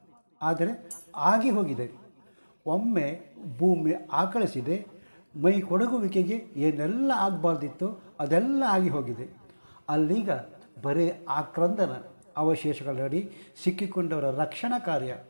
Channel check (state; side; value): inverted; both; correlation -1.00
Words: ಆದರೆ ಆಗಿ ಹೋಗಿದೆ. ಒಮ್ಮೆ ಭೂಮಿ ಆಕಳಿಸಿದೆ. ಮೈ ಕೊಡಗುವಿಕೆಗೆ ಏನೆಲ್ಲ ಆಗಬಾರ್ದಿತ್ತು ಅದೆಲ್ಲ ಆಗಿ ಹೋಗಿದೆ. ಅಲ್ಲೀಗ ಬರೀ ಆಕ್ರಂದನ ಅವಶೇಷಗಳಡಿ ಸಿಕ್ಕಿಕೊಂಡವರ ರಕ್ಷಣಾ ಕಾರ್ಯ.